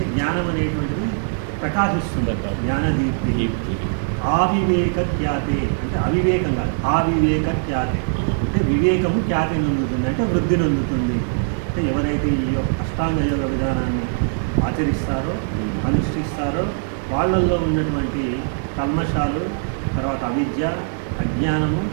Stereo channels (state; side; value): silent; left; digital silence